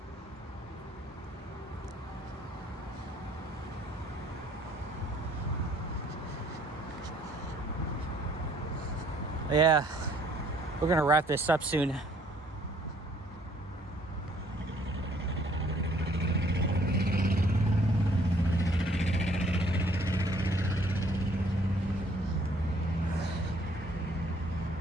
Yeah, we're gonna wrap this up soon.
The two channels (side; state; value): both; normal; correlation 0.62